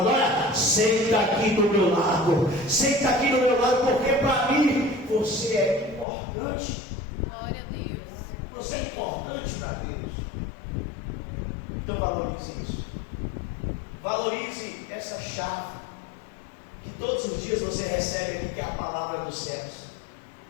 olha, senta aqui do meu lado, senta aqui do meu lado, porque para mim você é importante. Glória a Deus. Você é importante para Deus. Então valorize isso. Valorize essa chave que todos os dias você recebe aqui, que é a palavra dos céus.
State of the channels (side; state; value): right; drops out; at 6.1 s